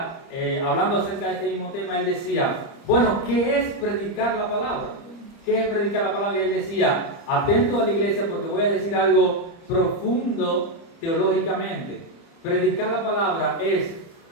hablando acerca de este mismo tema, él decía, bueno, ¿qué es predicar la palabra? ¿Qué es predicar la palabra? Y él decía, atento a la iglesia porque voy a decir algo profundo teológicamente. Predicar la palabra es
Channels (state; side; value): late; right; 30 ms